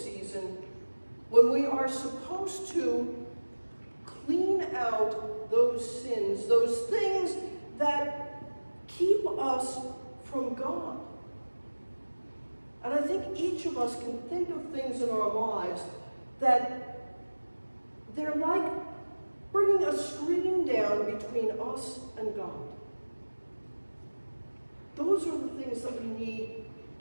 when we are supposed to clean out those sins, those things that keep us from God. And I think each of us can think of things in our lives that they're like bringing a screen down between us and God. Those are the things that we need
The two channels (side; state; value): both; inverted; correlation -1.00